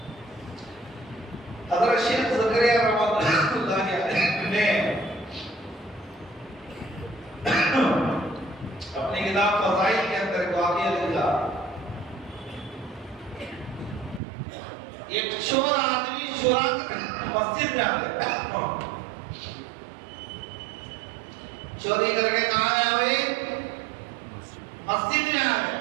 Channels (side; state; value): left; drops out; at 14.2 s